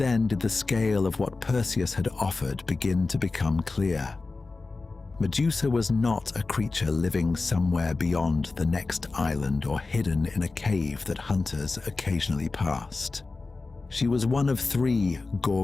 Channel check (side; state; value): right; quieter; 3.7 dB